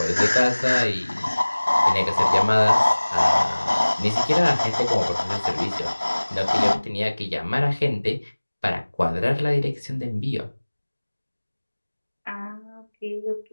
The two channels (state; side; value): inverted; both; correlation -1.00